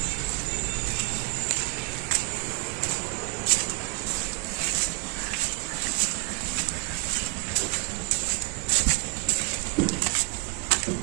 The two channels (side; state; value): left; quieter; 32.7 dB